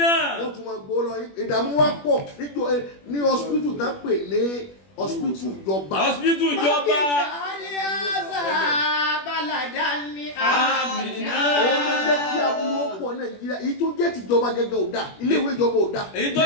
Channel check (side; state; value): right; late; 21 ms